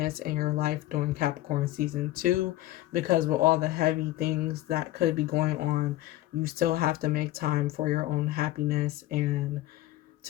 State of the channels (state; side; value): quieter; right; 15.8 dB